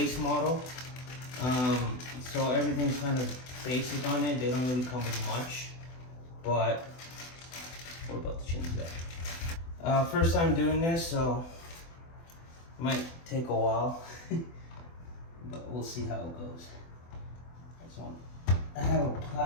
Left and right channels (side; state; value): right; late; 24 ms